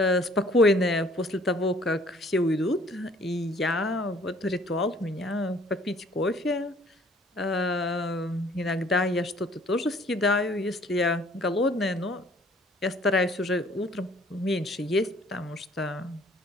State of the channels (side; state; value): both; normal; correlation 0.57